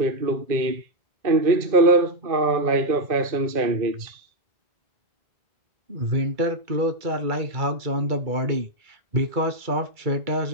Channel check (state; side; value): late; left; 2.3 ms